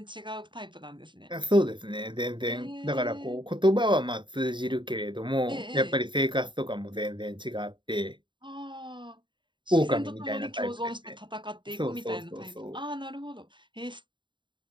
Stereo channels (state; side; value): late; left; 0.23 ms